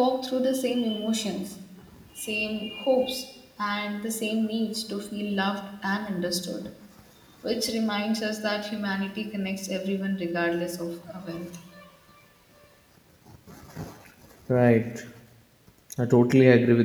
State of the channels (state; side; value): identical; both; correlation 1.00